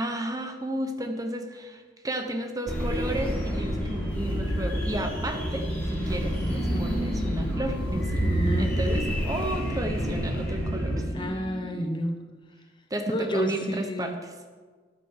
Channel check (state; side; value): normal; both; correlation 0.78